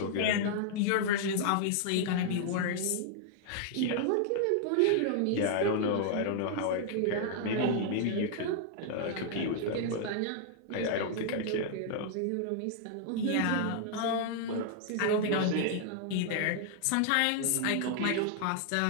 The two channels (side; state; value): both; different; correlation -0.01